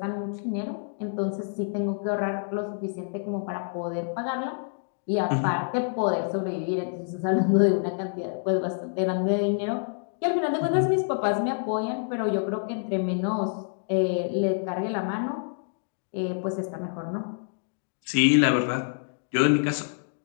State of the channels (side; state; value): right; silent; digital silence